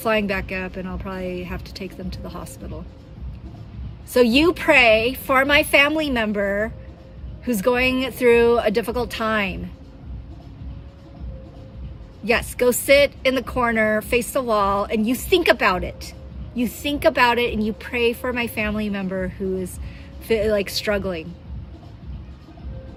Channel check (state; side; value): identical; both; correlation 1.00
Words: back up and I'll probably have to take them to the hospital. So you pray for my family member who's going through a difficult time. Yes, go sit in the corner, face the wall, and you think about it. You think about it and you pray for my family member who is like struggling.